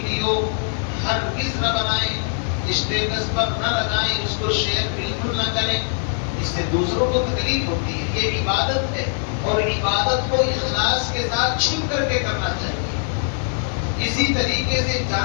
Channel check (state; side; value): silent; right; 64 dB below the other